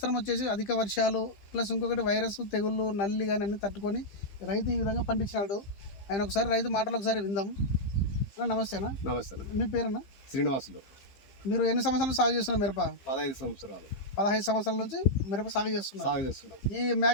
వచ్చేసి అధిక వర్షాలు ప్లస్ ఇంకొకటి వైరస్ తెగుళ్ళు నల్లి కానీ అన్ని తట్టుకొని రైతు ఈ విధంగా పండించినాడు. ఆయన ఒకసారి రైతు మాటలు ఒకసారి విందాం. నమస్తే అన్న. నమస్తే. మీ పేరన్నా? శ్రీనివాసులు. మీరు ఎన్ని సంవత్సరాలు సాగు చేస్తున్నారు మిరప? 15 సంవత్సరాలు. 15 సంవత్సరాల నుంచి మిరప సాగు చేస్తున్నారు. ఈ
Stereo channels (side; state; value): right; late; 15 ms